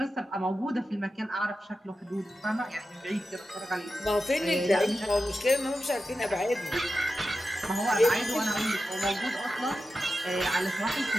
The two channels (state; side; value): normal; both; correlation 0.91